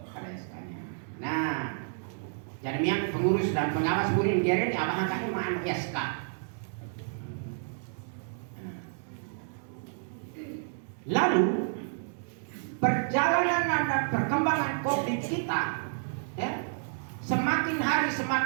ada SK-nya. Nah jadi yang pengurus dan pengawas burin geren abang angkatnya mana SK. Lalu perjalanan dan perkembangan COVID kita semakin hari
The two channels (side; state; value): left; silent; digital silence